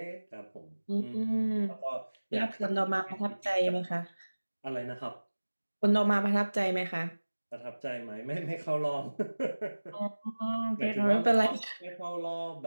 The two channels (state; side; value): inverted; both; correlation -1.00